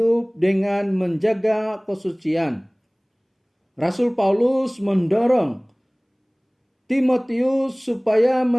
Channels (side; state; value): both; identical; correlation 1.00